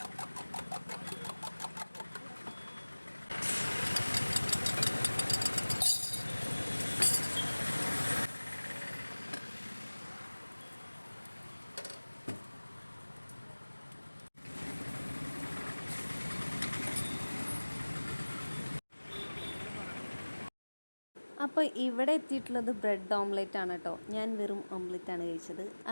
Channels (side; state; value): both; inverted; correlation -1.00